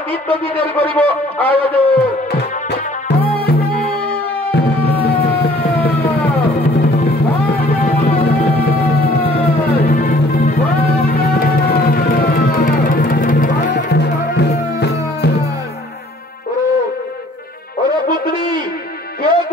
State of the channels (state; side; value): normal; both; correlation 0.56